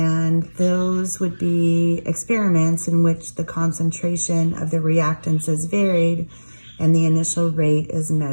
those would be experiments in which the concentration of the reactants is varied and the initial rate is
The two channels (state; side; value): inverted; both; correlation -1.00